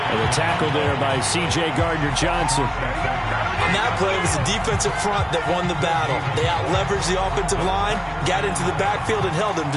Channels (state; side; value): identical; both; correlation 1.00